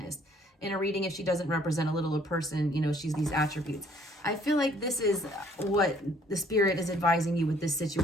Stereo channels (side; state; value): both; normal; correlation 0.61